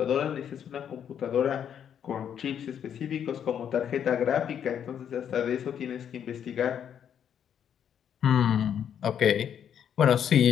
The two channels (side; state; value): right; quieter; 8.8 dB